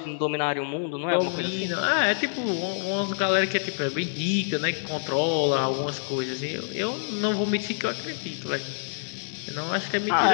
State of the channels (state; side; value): silent; right; digital silence